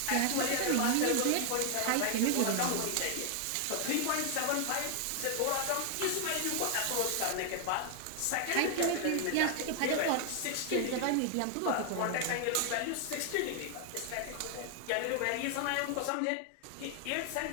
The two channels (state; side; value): different; both; correlation 0.00